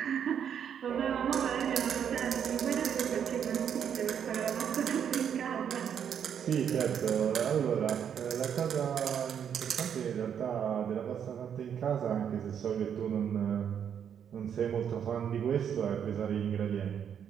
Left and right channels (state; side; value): quieter; left; 8.4 dB